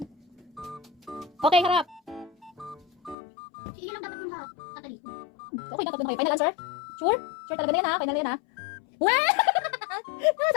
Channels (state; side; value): drops out; right; at 3.2 s